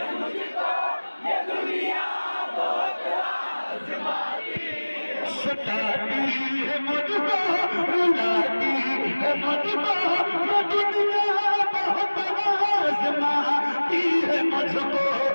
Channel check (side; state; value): both; inverted; correlation -1.00